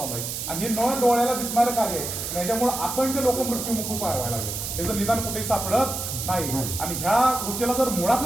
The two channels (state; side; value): noise; right; hiss, 5 dB below the sound